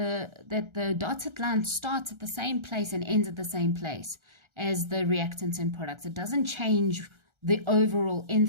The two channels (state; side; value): late; left; 1.3 ms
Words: dotted line starts at the same place and ends at the same place as the reactants and products. It doesn't change the overall